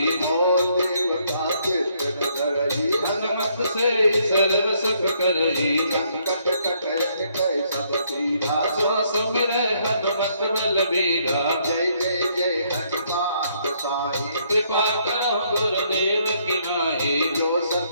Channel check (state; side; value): inverted; both; correlation -0.70